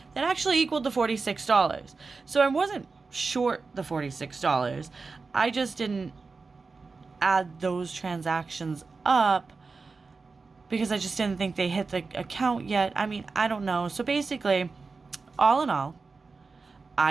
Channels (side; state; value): left; quieter; 4.3 dB